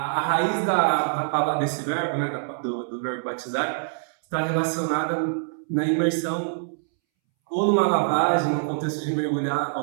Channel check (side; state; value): left; silent; 62 dB below the other